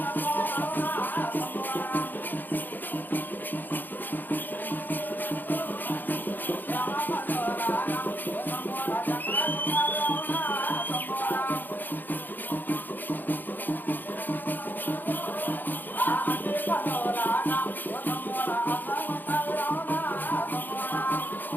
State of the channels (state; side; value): late; right; 0.088 ms